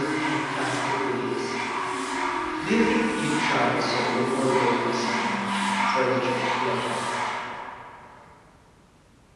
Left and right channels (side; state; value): both; identical; correlation 1.00